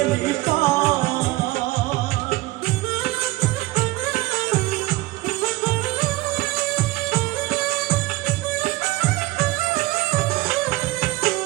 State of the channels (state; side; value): quieter; left; 19.6 dB